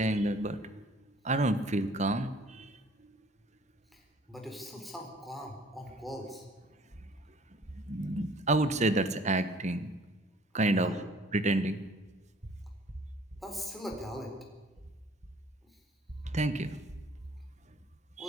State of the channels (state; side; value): normal; both; correlation 0.55